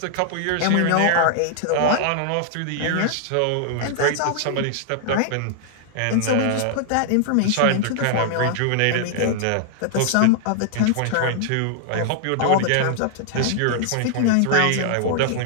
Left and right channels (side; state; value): both; different; correlation -0.01